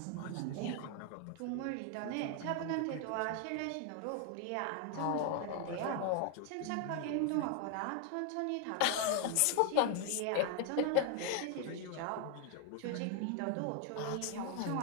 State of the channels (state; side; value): different; both; correlation 0.00